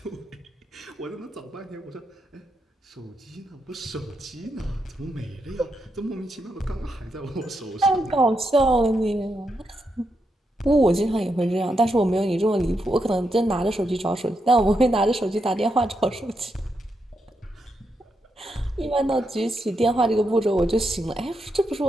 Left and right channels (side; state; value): both; normal; correlation 0.83